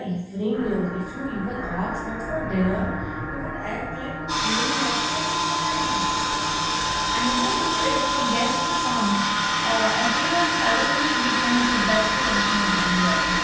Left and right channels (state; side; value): identical; both; correlation 1.00